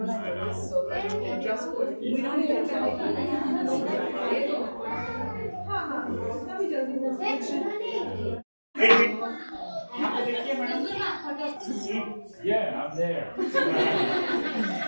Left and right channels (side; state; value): both; inverted; correlation -1.00